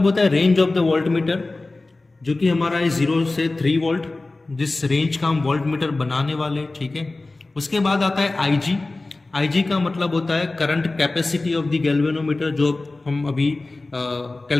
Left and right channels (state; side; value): quieter; right; 3.2 dB